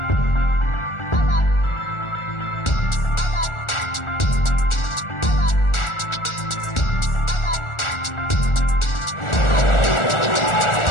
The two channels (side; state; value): right; late; 1.4 ms